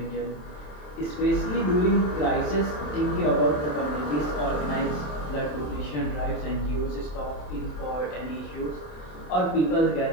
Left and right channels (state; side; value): late; right; 27 ms